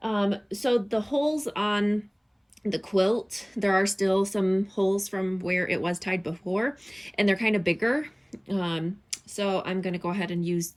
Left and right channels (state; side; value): identical; both; correlation 1.00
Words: So the holes on the quilt, there are still some holes from where it was tied before, and they're kind of bigger. So I'm going to go ahead and use